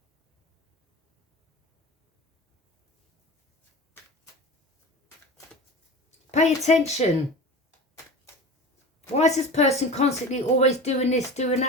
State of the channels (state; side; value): normal; both; correlation 0.33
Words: Pay attention. Why is this person constantly always doing this, doing